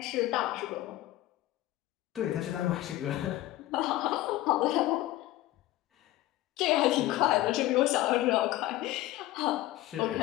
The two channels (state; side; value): quieter; right; 15.9 dB